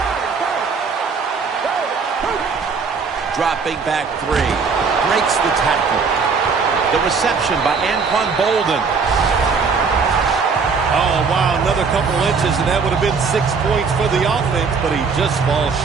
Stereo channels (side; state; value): left; quieter; 5.2 dB